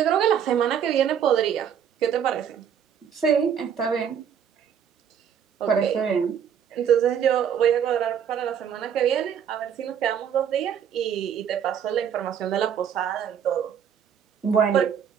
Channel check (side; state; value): left; quieter; 8.3 dB